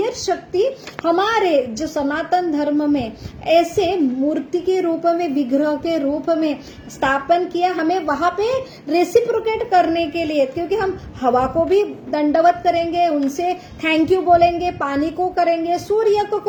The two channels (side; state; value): both; identical; correlation 1.00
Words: शक्ति हमारे जो सनातन धर्म में ऐसे मूर्ति के रूप में, विग्रह के रूप में स्थापन किया, हमें वहां पे रेसिप्रोकेट करने के लिए, क्योंकि हम हवा को भी दंडवत करेंगे, उनसे थैंक यू बोलेंगे, पानी को करेंगे, सूर्य को